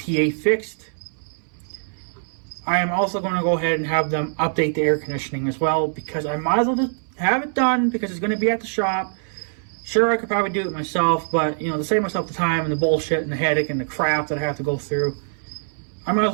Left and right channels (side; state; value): left; silent; 61 dB below the other